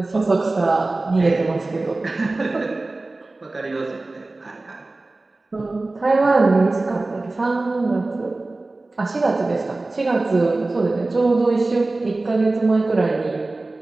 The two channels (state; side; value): quieter; left; 3.1 dB